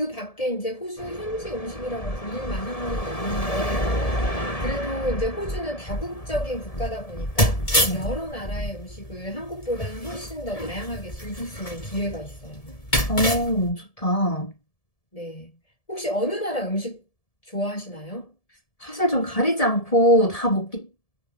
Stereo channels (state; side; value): late; right; 1.7 ms